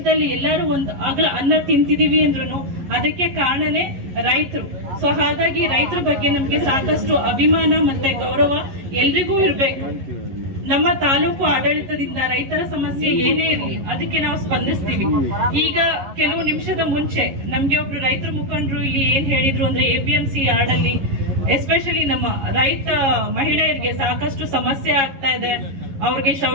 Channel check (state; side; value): late; left; 11 ms